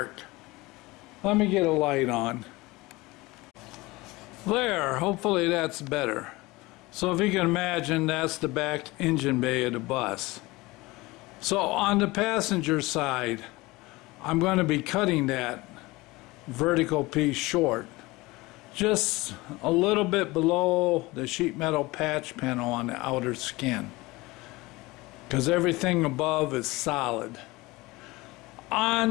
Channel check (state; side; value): quieter; right; 21.5 dB